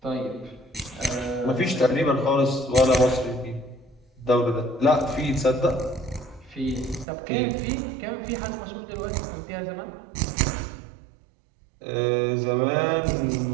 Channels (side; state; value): left; drops out; at 7.1 s